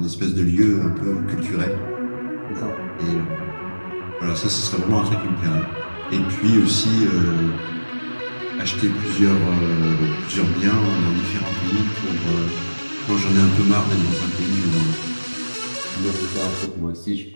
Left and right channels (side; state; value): both; inverted; correlation -1.00